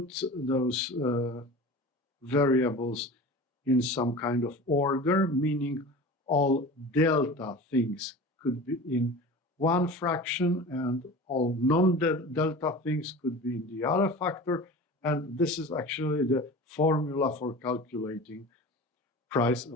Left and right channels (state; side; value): normal; both; correlation 0.35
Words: those variables in some kind of order, meaning all delta things could be in one fraction and all non-delta things could be in the other factor. And this is actually the formula for calculating price